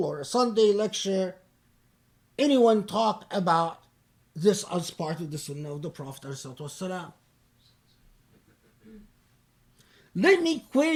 or a Sunday lecture anyone talk about this as part of the Sunnah of the Prophet ﷺ. Let me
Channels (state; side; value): identical; both; correlation 1.00